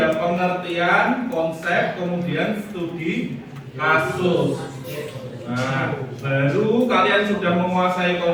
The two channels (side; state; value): both; identical; correlation 1.00